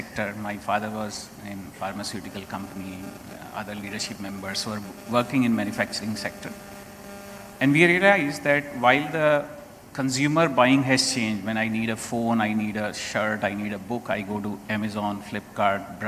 My father was in pharmaceutical company, other leadership members were working in manufacturing sector. And we realized that while the consumer buying has changed, when I need a phone, I need a shirt, I need a book, I go to Amazon, Flipkart,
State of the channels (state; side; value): identical; both; correlation 1.00